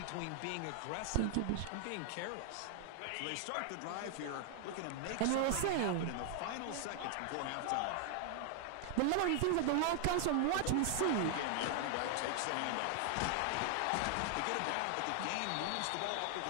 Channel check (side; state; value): both; different; correlation 0.00